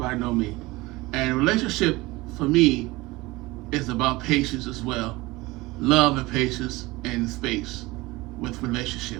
know me. And relationship, for me, is about patience as well. Love and patience and space with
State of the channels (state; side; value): quieter; left; 21.1 dB